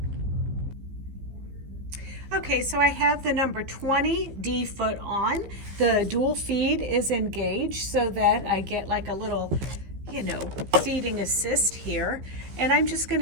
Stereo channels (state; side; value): late; left; 15 ms